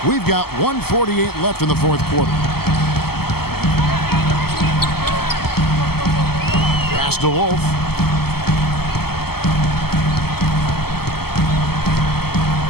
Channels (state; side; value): late; right; 0.96 ms